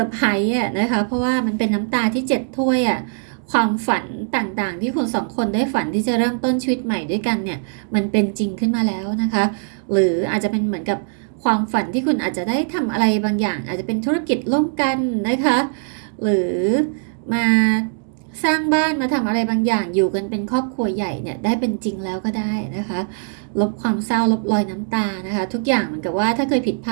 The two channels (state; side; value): silent; left; digital silence